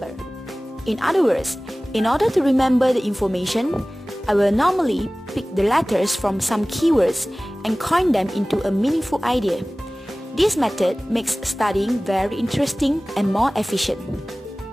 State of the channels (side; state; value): both; normal; correlation 0.98